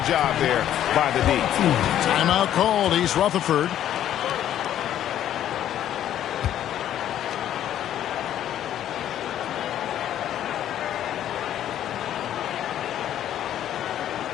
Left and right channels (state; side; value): quieter; right; 11.2 dB